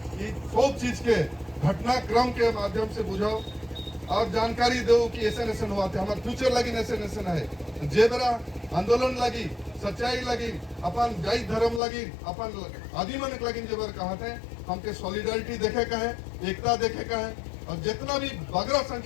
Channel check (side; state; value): right; drops out; at 11.8 s